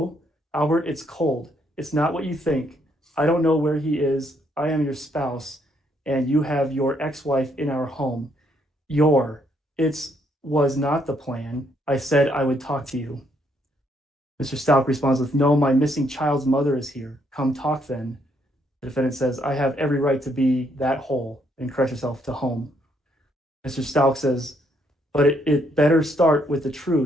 Albert, it's cold. It's not what you think. I don't know where he is. I am your spouse, and you have your ex-wife in our home. It was not the plan. I said I would talk to you." Mr. Stauch responds with, "No, my missing child's mother is here. Come talk then." The defendant says, "I have every right to be that whole," and corrects herself to home. Mr. Stauch says, "But it better start with the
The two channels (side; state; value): both; normal; correlation 0.72